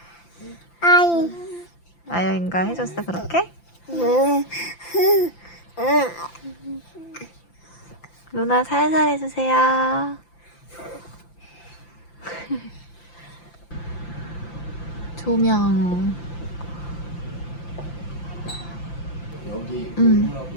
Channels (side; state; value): right; late; 5.9 ms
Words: 아이. 아영이가 해줬어, 그렇게? 누나 살살 해주세요. 조명. 여기